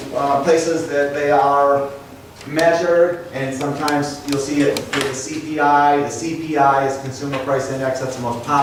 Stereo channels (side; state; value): both; identical; correlation 1.00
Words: places that they are measured, and sometimes you'll see it with the CPI. The CPI is Consumer Price Index. That's the most